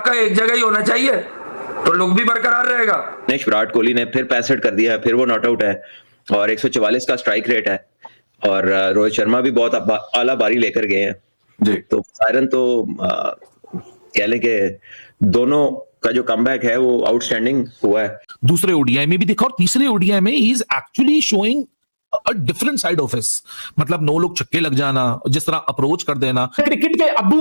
एक जगह ही होना चाहिए तो लुक भी बरकरार रहेगा। विराट कोहली ने फिर 65 कर दिया है, फिर वो नॉट आउट है और 144 का स्ट्राइक रेट है और रोहित शर्मा भी बहुत आला बारी लेकर गए हैं जी। तो सायरन तो कह लें कि दोनों का जो कमबैक है वो आउटस्टैंडिंग हुआ है। दूसरे ओडीआई में भी देखा और तीसरे ओडीआई में he is actually showing a different side of his, मतलब नो लोग छक्के लग जाना, जिस तरह अप्रोच कर देना। क्रिकेट के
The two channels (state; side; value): inverted; both; correlation -1.00